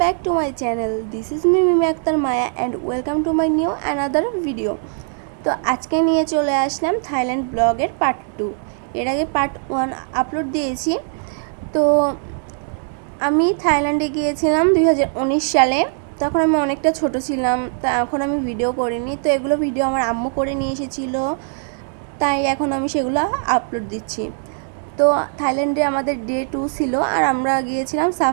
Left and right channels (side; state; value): left; silent; 66 dB below the other